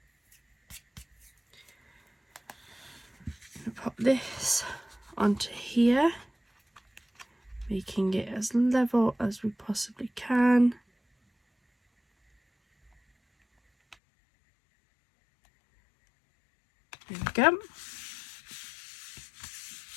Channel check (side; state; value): right; drops out; at 14.0 s